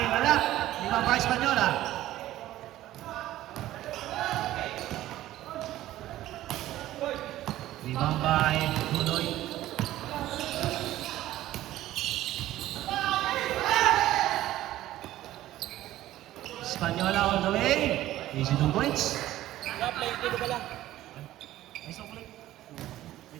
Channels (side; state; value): left; quieter; 14.5 dB